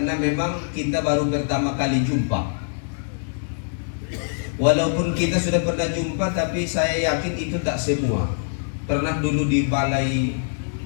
memang kita baru pertama kali jumpa. Walaupun kita sudah pernah jumpa, tapi saya yakin itu tak semua. Pernah dulu di balai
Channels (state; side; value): silent; right; digital silence